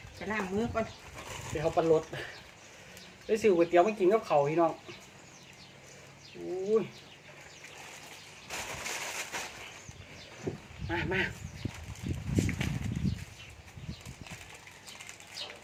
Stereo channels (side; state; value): both; identical; correlation 1.00